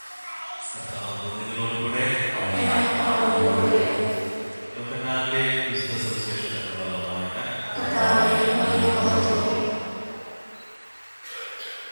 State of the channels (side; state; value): both; inverted; correlation -1.00